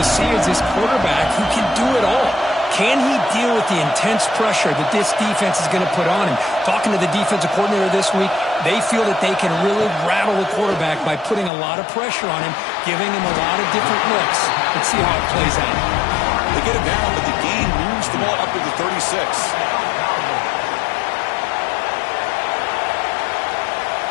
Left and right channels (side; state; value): right; drops out; at 11.5 s